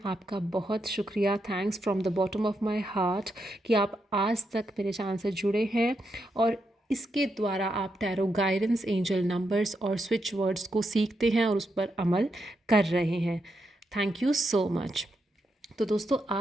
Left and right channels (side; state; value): both; normal; correlation 0.83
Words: आपका बहुत शुक्रिया। Thanks from the bottom of my heart कि आप आज तक मेरे चैनल से जुड़े हैं और इसके द्वारा आप टैरो गाइडेंस, एंजल नंबर्स और स्विच वर्ड्स को सीखते हैं और उस पर अमल कर रहे हैं। Thank you so much. तो दोस्तों,